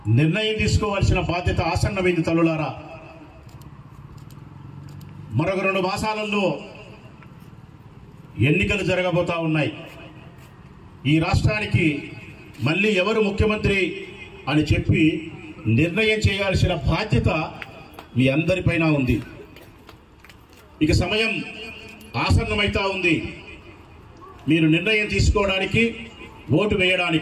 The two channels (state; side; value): identical; both; correlation 1.00